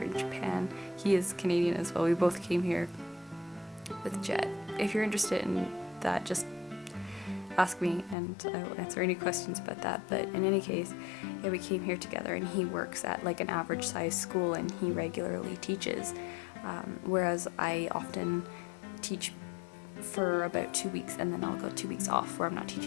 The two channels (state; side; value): drops out; right; at 8.2 s